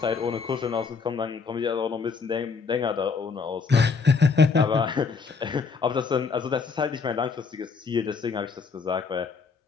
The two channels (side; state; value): right; quieter; 5.1 dB